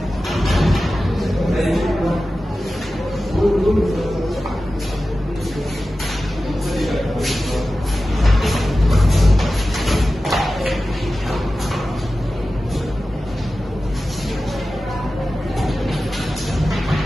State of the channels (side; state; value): both; normal; correlation 0.94